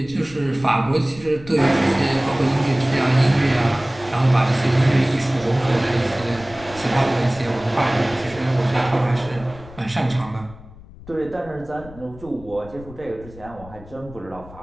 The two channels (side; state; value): left; noise; rumble, 18 dB below the sound